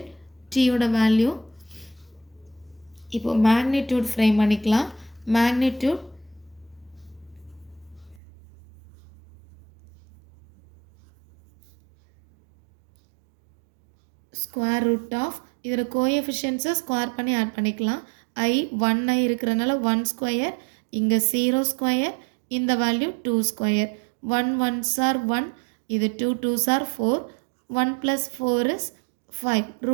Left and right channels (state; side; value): drops out; left; at 8.2 s